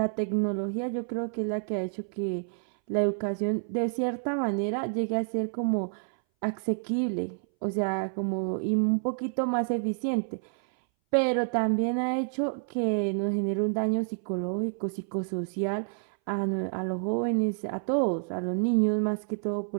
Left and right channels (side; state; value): left; silent; 59 dB below the other